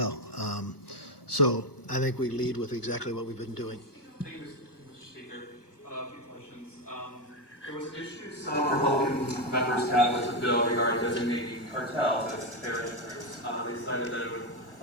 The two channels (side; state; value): right; late; 1.2 ms